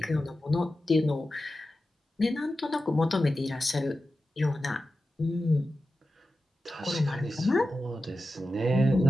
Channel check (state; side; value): normal; both; correlation 0.92